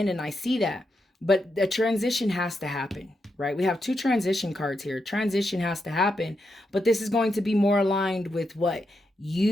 and I see that. But the transition has to happen, right? We have 2 transition cards here. Transition has to happen, but this is going to be more aligned with what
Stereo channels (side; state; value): both; normal; correlation 0.84